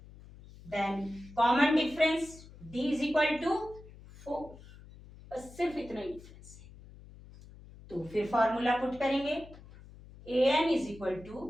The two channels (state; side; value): noise; left; hum, 19 dB below the sound